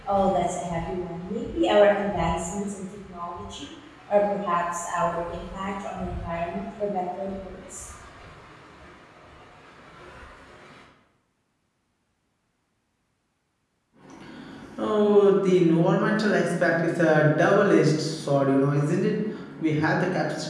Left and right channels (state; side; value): identical; both; correlation 1.00